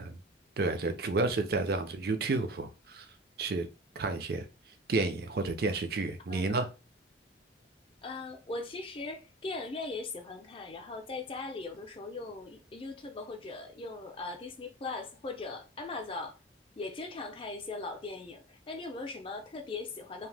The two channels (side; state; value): both; normal; correlation 0.34